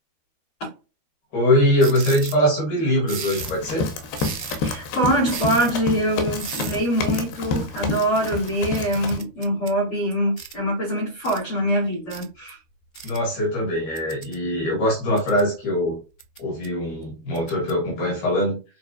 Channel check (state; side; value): late; right; 13 ms